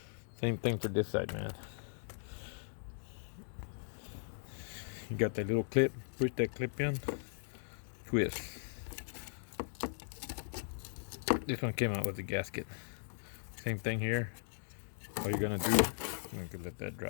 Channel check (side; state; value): right; silent; digital silence